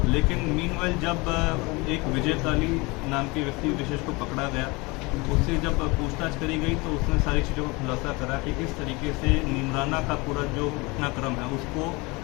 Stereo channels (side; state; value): right; quieter; 25.4 dB